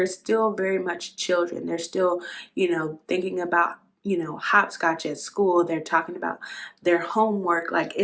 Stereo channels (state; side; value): identical; both; correlation 1.00